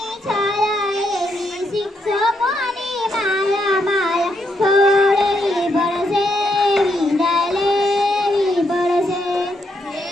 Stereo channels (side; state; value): both; normal; correlation 0.78